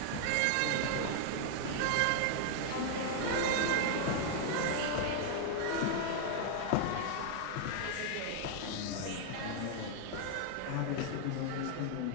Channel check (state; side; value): different; both; correlation 0.00